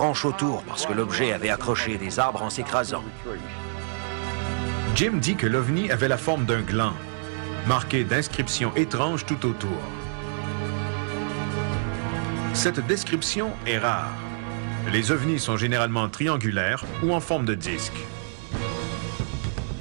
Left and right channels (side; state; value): left; silent; digital silence